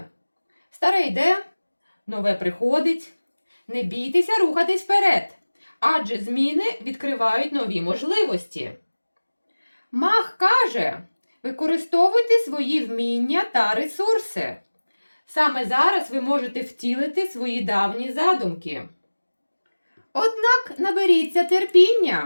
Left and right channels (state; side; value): inverted; both; correlation -1.00